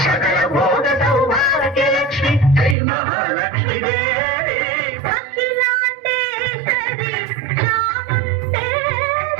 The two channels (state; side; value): drops out; left; at 2.8 s